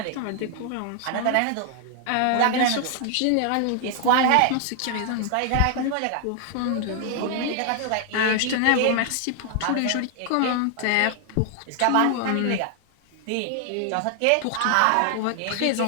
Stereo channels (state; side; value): different; both; correlation 0.00